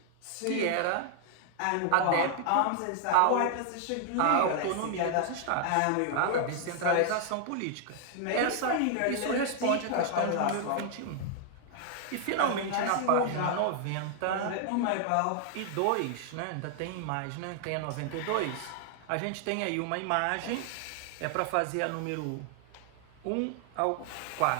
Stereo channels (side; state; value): both; different; correlation 0.00